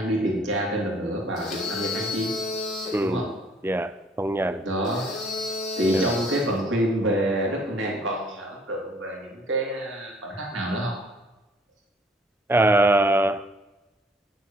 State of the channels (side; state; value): both; normal; correlation 0.59